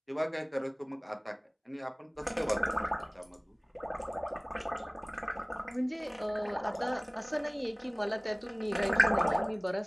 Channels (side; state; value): both; identical; correlation 1.00